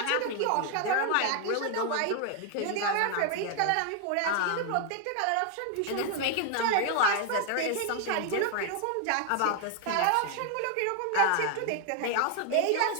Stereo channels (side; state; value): both; different; correlation 0.00